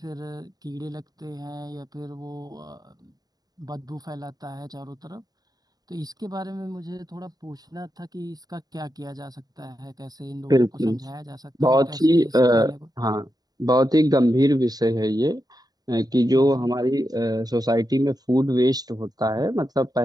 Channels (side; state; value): left; late; 0.19 ms